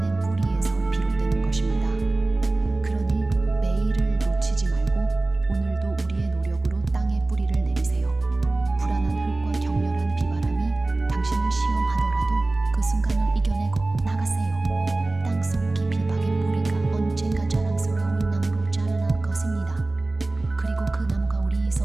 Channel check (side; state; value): left; quieter; 3.0 dB